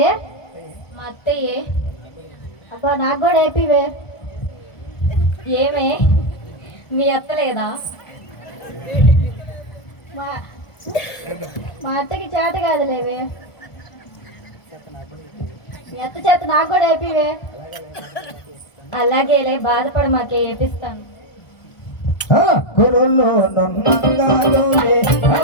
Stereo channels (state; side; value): late; right; 1.4 ms